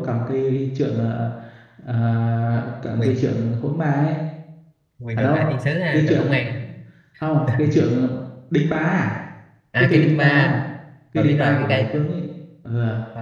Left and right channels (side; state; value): both; identical; correlation 1.00